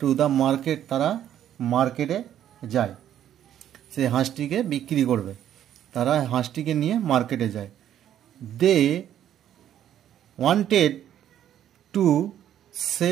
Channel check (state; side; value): quieter; left; 10.8 dB